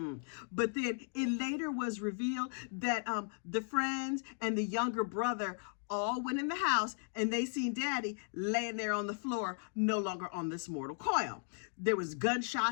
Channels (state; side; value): silent; right; 54 dB below the other